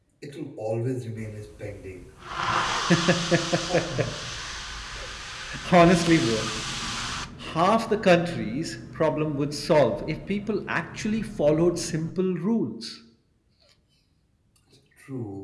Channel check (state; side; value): identical; both; correlation 1.00